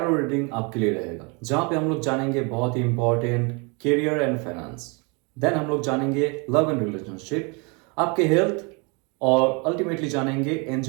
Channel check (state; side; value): quieter; left; 31.4 dB